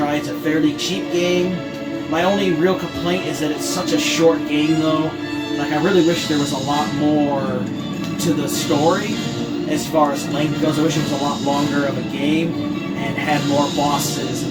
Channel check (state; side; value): identical; both; correlation 1.00